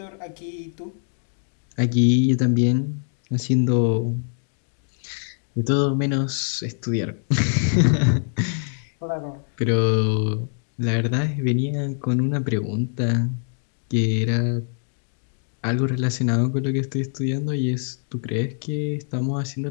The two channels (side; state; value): right; silent; digital silence